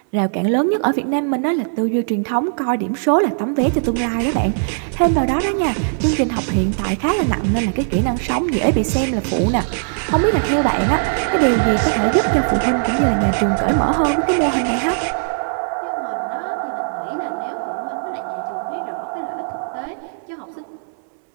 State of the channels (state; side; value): silent; left; digital silence